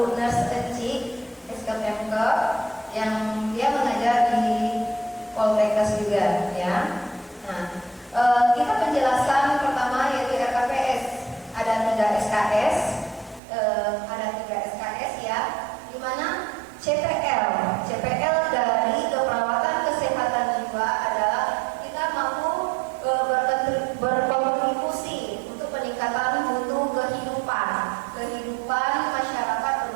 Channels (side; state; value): left; drops out; at 13.4 s